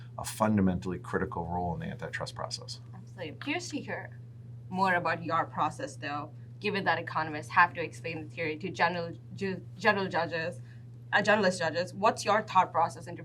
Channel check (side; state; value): both; identical; correlation 1.00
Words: a fundamentally critical role in the antitrust process. Absolutely. I'm curious to hear more about your process, though, given that economists have to explain the theory to generalist judges. What's your thought process into